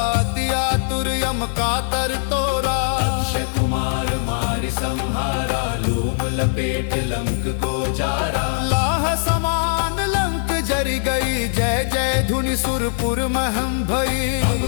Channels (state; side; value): silent; right; 65 dB below the other